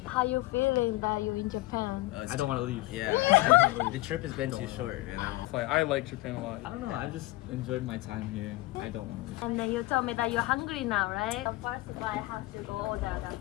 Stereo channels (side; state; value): right; quieter; 19.9 dB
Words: How you feeling that you're in Japan? I don't want to leave. Yeah. The trip has been too short, man. I like Japan a lot. I don't know. I just enjoyed my time here. I don't want to leave. And then you told me that you're hungry now, right? So first of all, I have to go order the